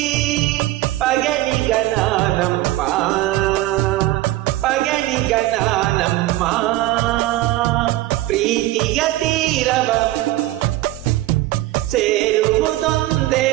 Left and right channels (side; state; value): left; quieter; 16.6 dB